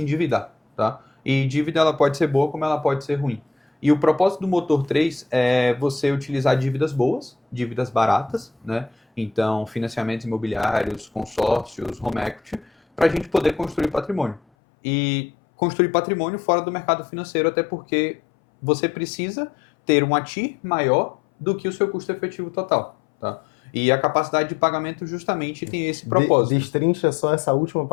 tá? E dívida ela pode ser boa como ela pode ser ruim. E o propósito do motor 3 é você utilizar dívidas boas, dívidas baratas, né? Então, financiamentos imobiliários, consórcios, home equity, para a gente poder construir patrimônio. E construir patrimônio fora do mercado financeiro, até porque você precisa ter um ATIR maior do que o seu custo efetivo total, tá? E a capacidade de pagamento justamente tem esse propósito. Destrincha só essa última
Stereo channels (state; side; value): drops out; right; at 14.4 s